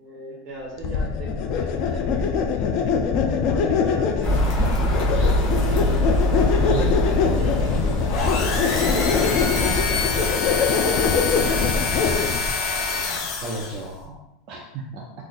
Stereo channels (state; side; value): quieter; right; 3.6 dB